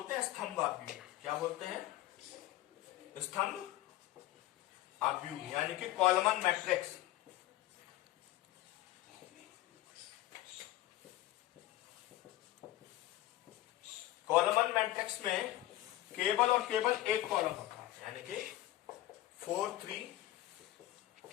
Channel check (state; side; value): quieter; right; 15.4 dB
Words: हैं स्तंभ आव्यूह। क्या बोलते हैं? स्तंभ आव्यूह, यानी कि कॉलमन मैट्रिक्स। कॉलमन मैट्रिक्स में केवल और केवल एक कॉलम होता है, यानी कि 4 3